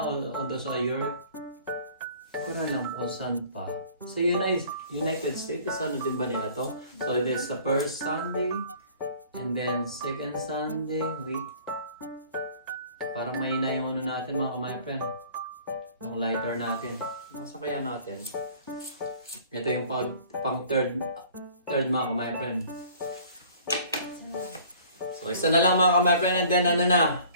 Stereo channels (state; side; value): inverted; both; correlation -0.51